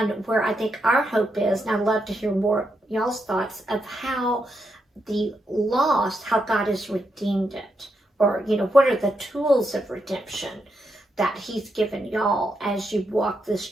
where I think our hope is, and I'd love to hear more y'all's thoughts of how the loss, how God has redeemed it, or, what are the tools of redemption that he's given y'all as you walk this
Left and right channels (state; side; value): normal; both; correlation 0.82